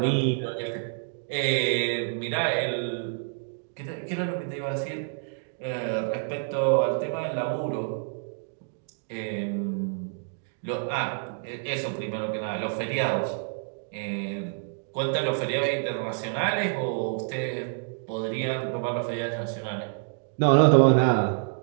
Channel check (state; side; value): silent; left; digital silence